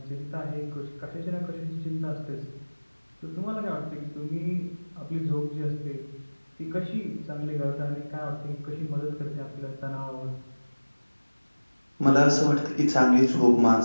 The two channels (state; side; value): inverted; both; correlation -1.00